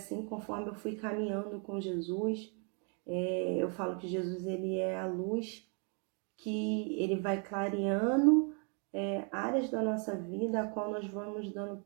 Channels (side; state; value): left; quieter; 39.0 dB